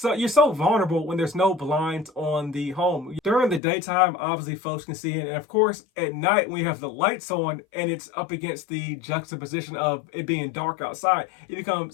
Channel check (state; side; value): drops out; right; at 3.6 s